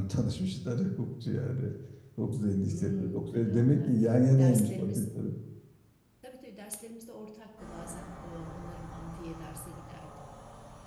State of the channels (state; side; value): identical; both; correlation 1.00